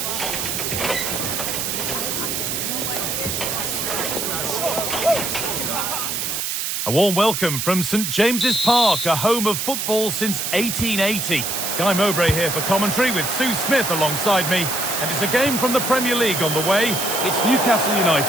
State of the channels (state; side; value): noise; right; hiss, 2 dB below the sound